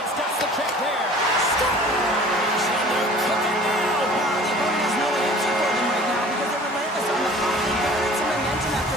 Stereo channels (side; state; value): both; normal; correlation 0.46